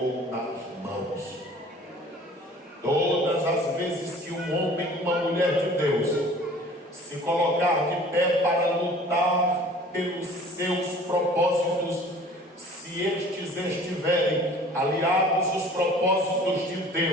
nas mãos. Todas as vezes que um homem e uma mulher de Deus se colocar de pé para lutar pelos seus propósitos, se estes estiverem aliados aos propósitos de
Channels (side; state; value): both; normal; correlation 0.48